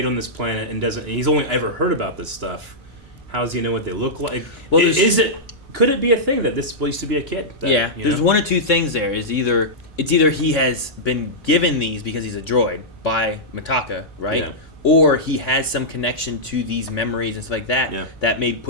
on this planet and he's only ever heard about this stuff, how does he know what they look like? Well, Is it? could it be a thing that this used to be a kid? That, Yeah, you there's know? one or two things there. It's either he has been given these because he's a droid by Mitaka, right? Yeah. Or he has some connection to these memories and stuff like that Yeah. that may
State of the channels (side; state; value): both; normal; correlation -0.11